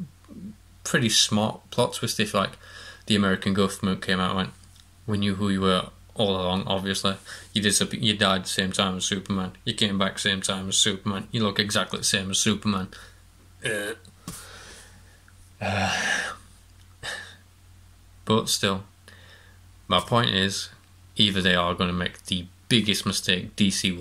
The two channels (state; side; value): identical; both; correlation 1.00